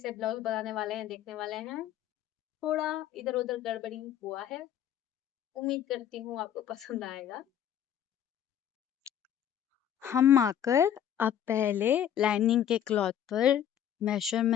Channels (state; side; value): quieter; right; 10.0 dB